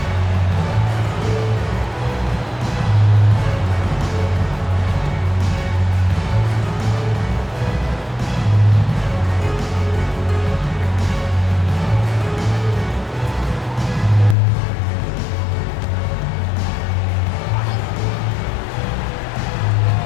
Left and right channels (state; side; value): drops out; right; at 14.4 s